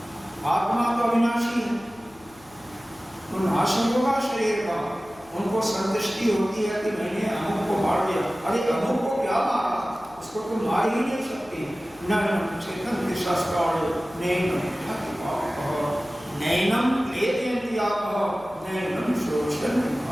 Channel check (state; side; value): noise; left; hum, 27 dB below the sound